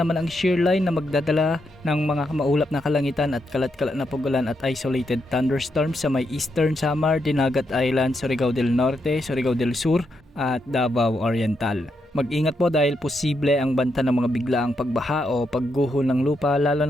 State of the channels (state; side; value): normal; both; correlation 0.81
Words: ang shear line na magdadala ng mga maulap na kalangitan at kalat-kalat na pagulan at isolated thunderstorms sa may Eastern Samar, Dinagat Island, Surigao del Norte, Surigao del Sur at Davao Oriental. Mag-ingat po dahil posible ang banta ng mga biglaang pagbaha o pagguho ng lupa, lalo